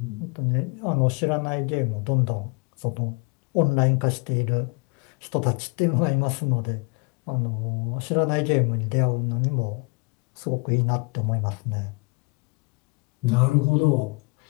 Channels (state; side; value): quieter; right; 31.4 dB